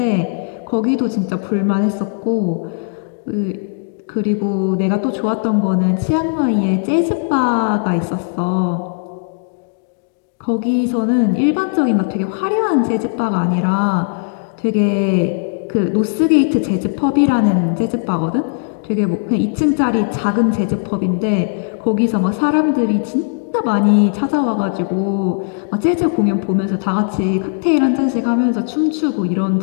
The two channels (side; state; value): right; silent; digital silence